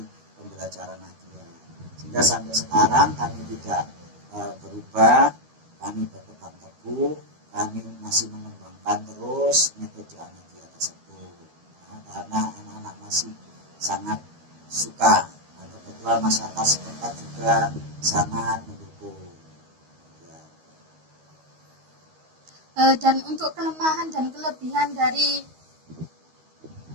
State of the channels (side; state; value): left; late; 13 ms